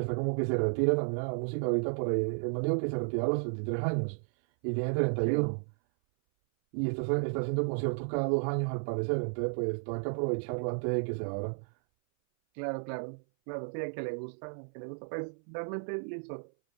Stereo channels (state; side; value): silent; left; 56 dB below the other